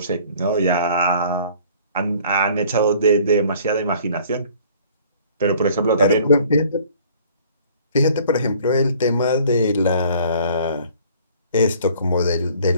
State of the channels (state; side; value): inverted; both; correlation -0.53